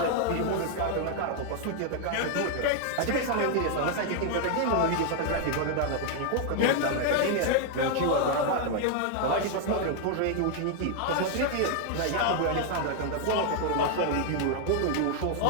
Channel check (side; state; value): both; different; correlation 0.00